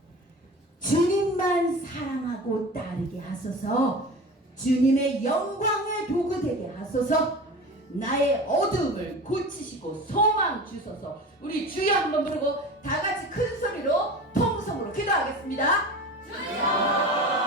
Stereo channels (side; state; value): both; normal; correlation 0.34